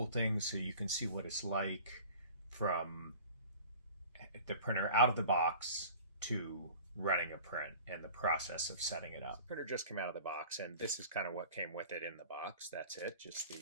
thing so you can see what it's like from the printer out of the box to running a print and the process of setting it up. The printer just came out of the box, and this is kind of what came with it in the box. That's it, just the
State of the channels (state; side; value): inverted; both; correlation -0.43